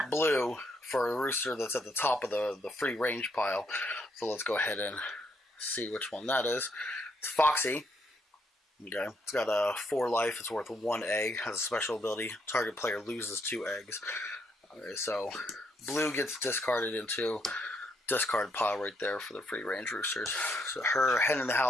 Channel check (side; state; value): both; normal; correlation 0.74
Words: blue for a rooster that's at the top of the free range pile. So let's go ahead and see which one that is. It's Foxy. Okay. It's got 4 life. It's worth 1 egg. Has a special ability. Target player loses 2 eggs. Okay, so blue gets discarded into discard pile right there for the free range roosters. So her Hen in the